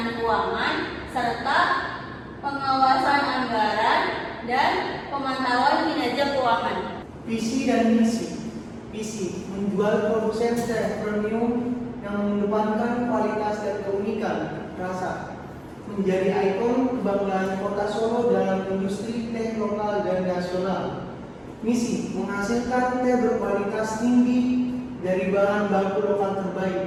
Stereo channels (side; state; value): both; identical; correlation 1.00